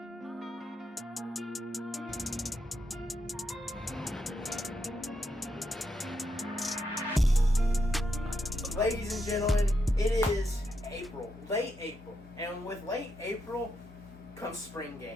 Ladies and gentlemen, it is April, late April, and with late April comes spring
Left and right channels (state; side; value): normal; both; correlation 0.82